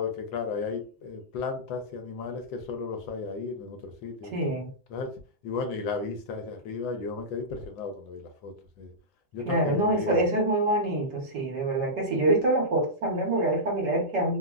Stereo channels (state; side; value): normal; both; correlation -0.14